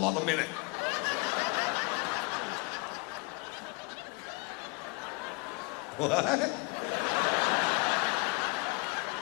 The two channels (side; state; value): right; quieter; 29.3 dB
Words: on the minute. What?